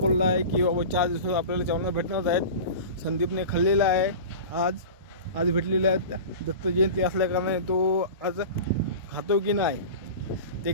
आहे की बाबा 4 दिवसात आपल्याला चवना भेटणार आहेत. संदीपने खाल्लेला आहे. आज भेटलेल्या आहेत. दत्त जयंती असल्या कारणाने तो आज खातो की नाही ते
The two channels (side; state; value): both; inverted; correlation -0.33